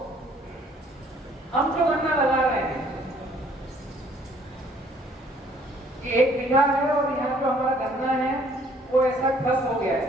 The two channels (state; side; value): normal; both; correlation 0.60